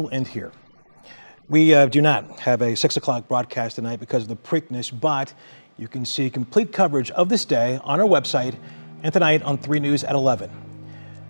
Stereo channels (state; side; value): inverted; both; correlation -1.00